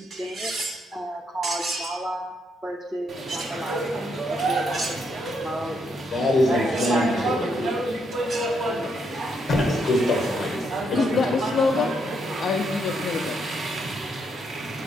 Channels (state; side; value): normal; both; correlation 0.76